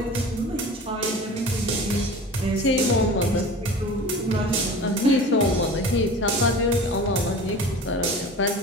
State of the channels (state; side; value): normal; both; correlation 0.37